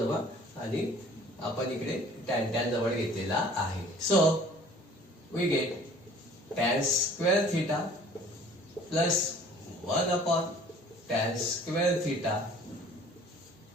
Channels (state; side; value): normal; both; correlation 0.51